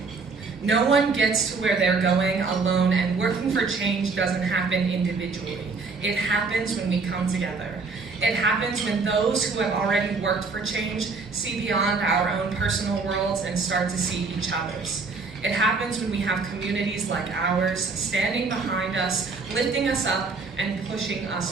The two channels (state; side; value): quieter; left; 4.3 dB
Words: No one gets to where they're going alone, and working for change doesn't happen individually. It happens when we come together. It happens when those who have already worked for change see beyond our own personal worlds and start to see each other's. It happens when we have communities like ours standing behind us, lifting us up, and pushing